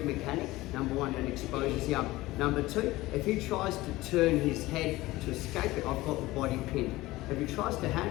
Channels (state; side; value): quieter; right; 18.6 dB